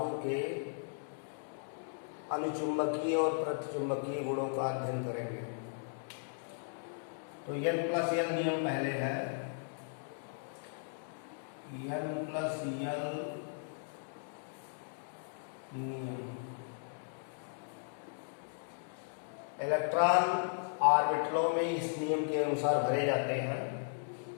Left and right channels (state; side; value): silent; right; digital silence